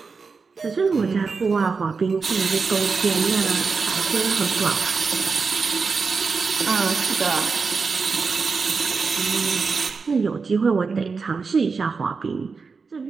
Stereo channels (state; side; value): quieter; left; 4.9 dB